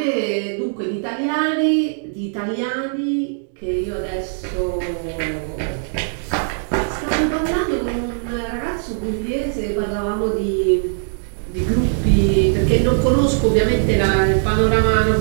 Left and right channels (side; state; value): left; silent; digital silence